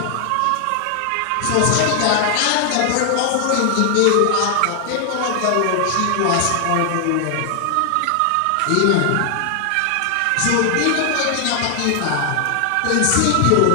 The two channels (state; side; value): different; both; correlation 0.00